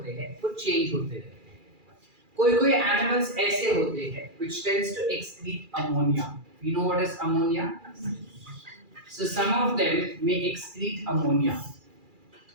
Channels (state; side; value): late; left; 2.4 ms